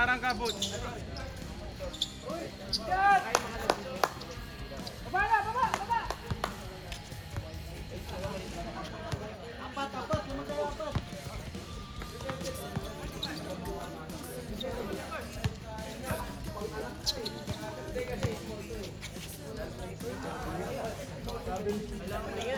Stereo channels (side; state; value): both; identical; correlation 1.00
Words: ka, Boots! Yan! Baba na! Baba! Baba!